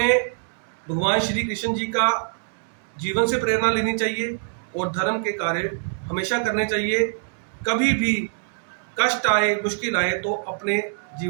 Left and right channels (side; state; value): left; silent; digital silence